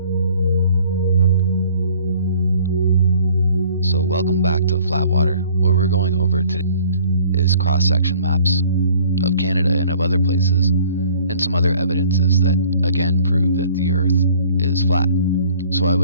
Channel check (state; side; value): inverted; both; correlation -0.54